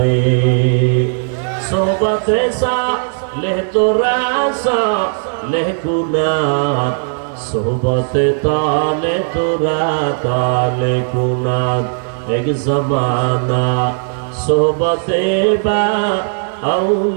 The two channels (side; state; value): left; silent; 69 dB below the other